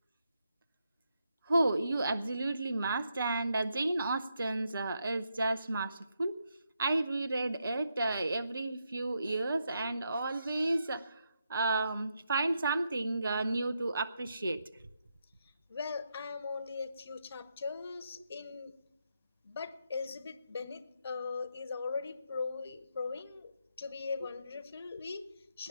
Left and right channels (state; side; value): inverted; both; correlation -0.82